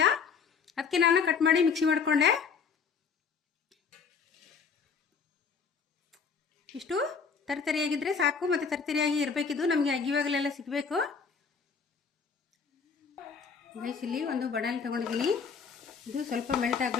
ಅದಕ್ಕೆ ನಾನು ಕಟ್ ಮಾಡಿ ಮಿಕ್ಸಿ ಮಾಡಿಕೊಂಡೆ. ಇಷ್ಟು ತರಿತರಿಯಾಗಿದ್ದರೆ ಸಾಕು. ಮತ್ತು ತರಿತರಿಯಾಗಿ ಇರಬೇಕಿದ್ದು, ನಮಗೆ ಅಗ್ಗಿವಾಗಲೆಲ್ಲ ಸಿಗಬೇಕು. ಗೈಸ್, ಇಲ್ಲಿ ಒಂದು ಬಡಾಣಿ ತೊಗೊಂಡಿದ್ದೀನಿ. ಇದು ಸ್ವಲ್ಪ ಮೆಲ್ಟ್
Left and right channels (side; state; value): right; quieter; 5.9 dB